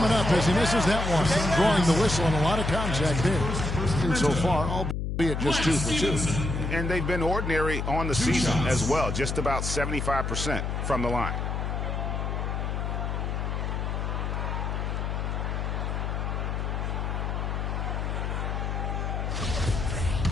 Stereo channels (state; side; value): noise; left; hum, 2 dB below the sound